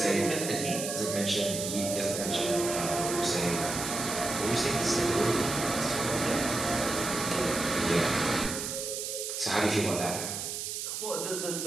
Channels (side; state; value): right; noise; hiss, 4 dB below the sound